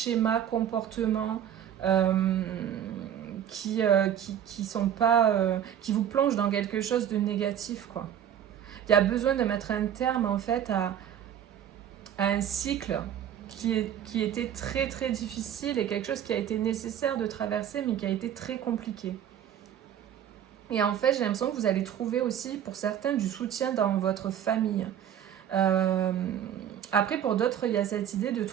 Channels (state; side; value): quieter; left; 9.8 dB